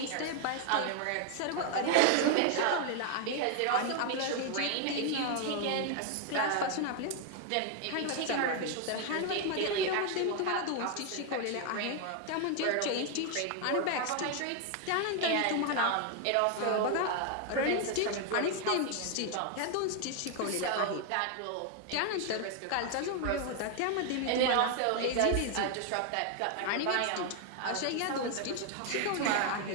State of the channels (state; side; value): different; both; correlation 0.01